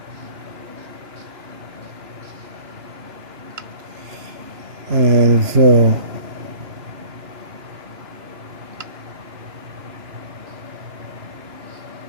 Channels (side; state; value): left; late; 2.9 ms